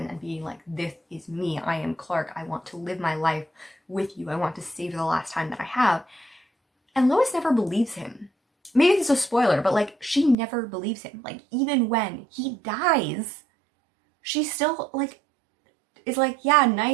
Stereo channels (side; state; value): left; drops out; at 10.4 s